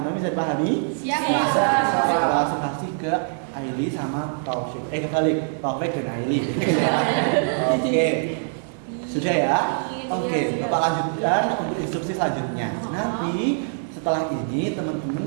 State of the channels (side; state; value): left; silent; 60 dB below the other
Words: bisa dipahami? Siap. Kita langsung kasih ke Aili sama Taufik. Kebalik, Taufik dan Aili. Oke, sudah ya. Oke, Bapak lanjutkan untuk instruksi selanjutnya. Nanti setelah ini